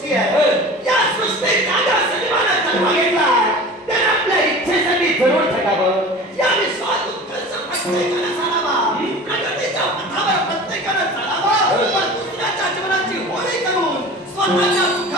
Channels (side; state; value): both; normal; correlation 0.37